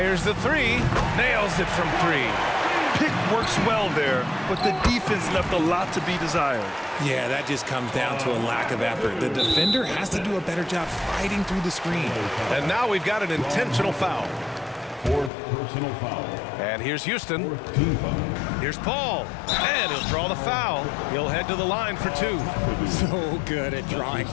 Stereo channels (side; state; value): right; drops out; at 15.3 s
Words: the three. Nails it from three. Pick works well there, but the defense left a lot to be desired. Yeah, that just comes down to a lack of effort. The defender has to do a better job fighting through the screen. And now we've got an intentional foul. Fourth personal foul. And here's Houston. Fourth team foul. Here's Paul. And he'll draw the foul. He'll head to the line for two. So good at drawing